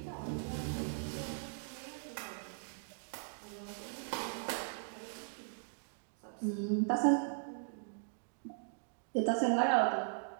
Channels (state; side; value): silent; left; digital silence